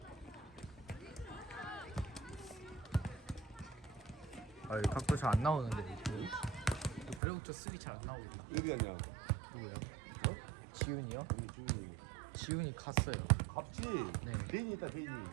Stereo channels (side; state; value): left; drops out; at 7.2 s